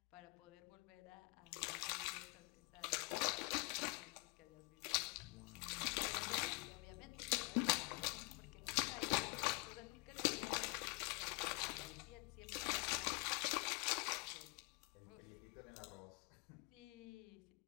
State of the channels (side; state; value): right; quieter; 29.7 dB